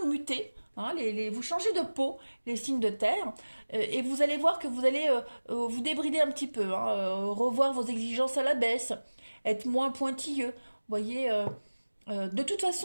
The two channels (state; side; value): inverted; both; correlation -1.00